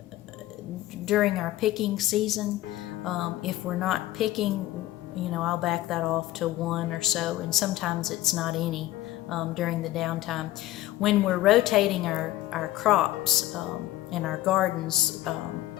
during our picking season. If we're not picking, I'll back that off to 1 or so, and sometimes it's not any during the downtime. When we're rotating our crops in our gardens,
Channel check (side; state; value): right; quieter; 15.8 dB